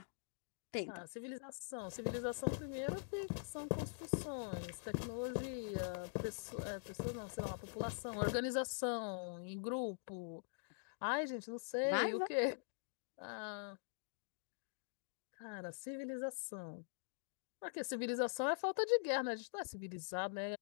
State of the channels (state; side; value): silent; right; digital silence